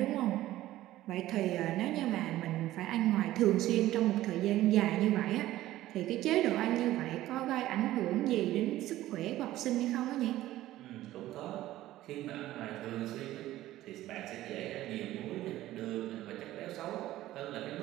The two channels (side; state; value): left; quieter; 15.1 dB